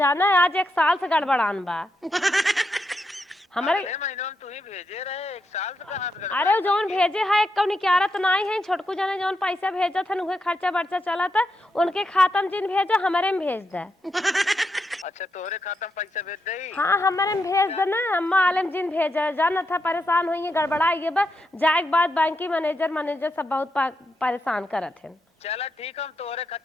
है, आज 1 साल से गड़बड़ान बा हमारे। अगले महीनों में तू ही भेजे रहे, 1 साल से कहाँ से अरे गड़बड़ाई जौन मलकिन? भेजे है एक निकारत नाई है, छोटकू जाने जौन पैसा भेजा था उहे खर्चा बर्चा चला था, उनके खाता में जिन भेजा हमारे में भेज दे। अच्छा तोहरे खाता में पैसा भेज दई। हाँ हमारे में भेज दे ना, अम्मा आलम जिन भेजा जाना था, परेशान हुई गड़बड़ा ये बा जाए के बाद बैंक की मैनेजर सब बहुत परेशान करत है। चला ठीक, हम तोहरे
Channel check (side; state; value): both; normal; correlation 0.83